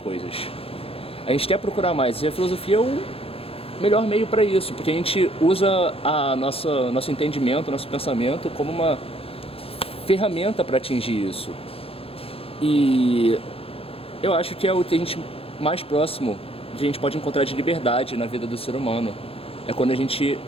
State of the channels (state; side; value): late; right; 0.27 ms